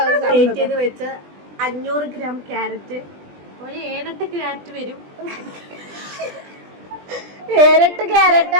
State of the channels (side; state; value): left; late; 20 ms